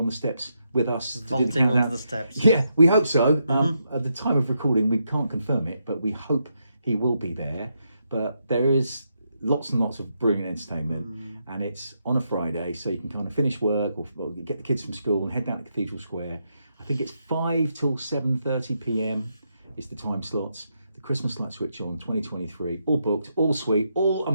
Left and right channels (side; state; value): both; inverted; correlation -0.81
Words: the steps with us to do the countdown? On the steps. Yeah, we hope so. At the time of recording, we can't confirm it, but we hope he will be there. But there is lots and lots of brilliant entertainment. And it's on a Friday, so you can kind of finish work or get the kids from school and head down to Cathedral Square. I think it's 5 till 7:30 p.m. is the time slots. Christmas light switch on 2023, all booked, all sweet, all